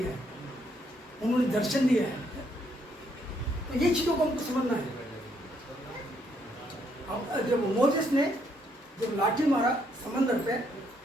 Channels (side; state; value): both; normal; correlation 0.72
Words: है, उन्होंने दर्शन दिया है। तो ये चीज़ों को हमको समझना है। अब जब मोसेस ने जब लाठी मारा समंदर पे,